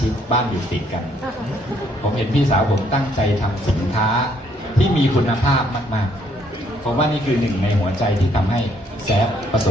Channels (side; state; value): both; normal; correlation 0.68